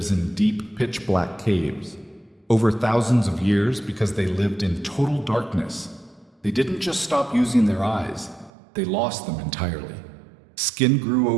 in deep, pitch-black caves. Over thousands of years, because they lived in total darkness, they didn't just stop using their eyes, they lost them entirely. Skin grew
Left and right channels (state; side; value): drops out; left; at 8.5 s